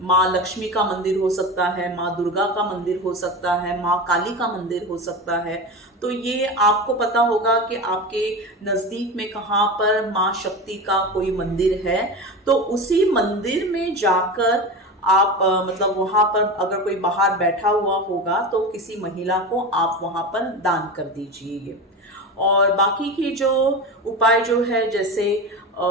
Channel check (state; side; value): normal; both; correlation 0.25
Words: माँ लक्ष्मी का मंदिर हो सकता है, माँ दुर्गा का मंदिर हो सकता है, माँ काली का मंदिर हो सकता है, तो ये आपको पता होगा कि आपके नज़दीक में कहाँ पर माँ शक्ति का कोई मंदिर है। तो उसी मंदिर में जाकर आप मतलब वहाँ पर अगर कोई बाहर बैठा हुआ होगा तो किसी महिला को आप वहाँ पर दान कर दीजिए। और बाकी की जो उपाय जो है, जैसे